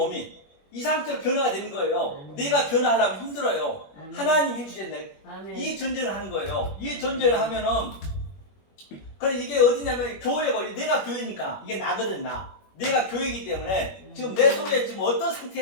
이 상태로 변화가 되는 거예요. 내가 변화하려면 힘들어요. 하나님 해주셨네. 이 전쟁을 하는 거예요. 이 전쟁을 하면은 그래 이게 어디냐면 교회고 내가 교회니까 이게 나거든 나. 내가 교회이기 때문에 지금 내 속에 지금 어떤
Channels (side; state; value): right; late; 21 ms